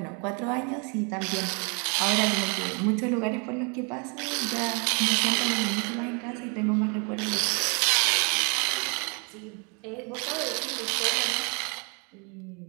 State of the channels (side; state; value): left; quieter; 36.2 dB